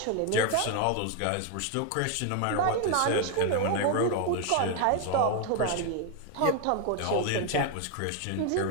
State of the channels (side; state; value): both; different; correlation 0.01